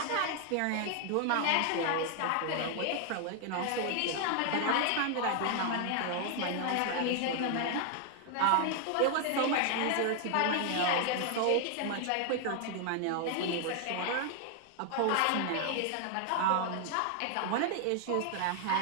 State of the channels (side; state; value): both; different; correlation 0.00